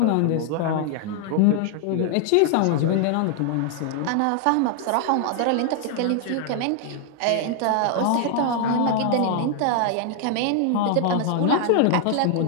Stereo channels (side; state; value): both; different; correlation 0.00